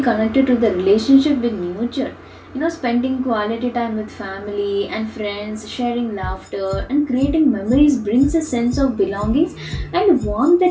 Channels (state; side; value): identical; both; correlation 1.00